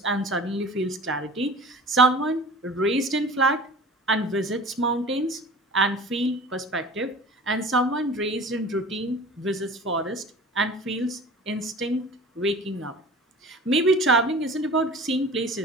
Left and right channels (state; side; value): normal; both; correlation 0.41